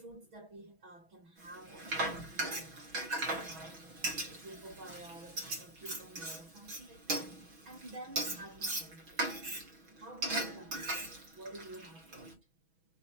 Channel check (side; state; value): left; late; 6.1 ms